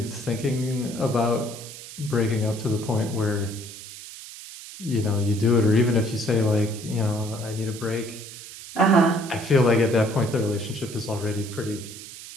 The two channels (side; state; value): right; noise; hiss, 14 dB below the sound